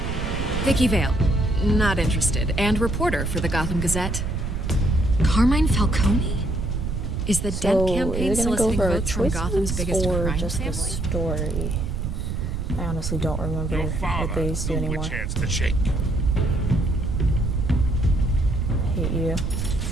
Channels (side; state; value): right; noise; rumble, 3 dB below the sound